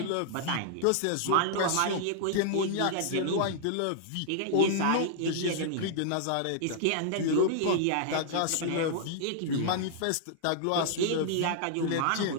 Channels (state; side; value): different; both; correlation -0.01